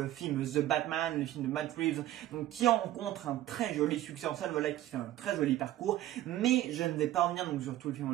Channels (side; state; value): left; quieter; 14.1 dB